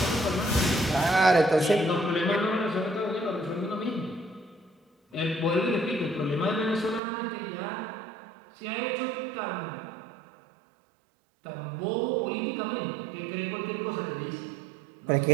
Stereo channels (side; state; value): left; drops out; at 7.0 s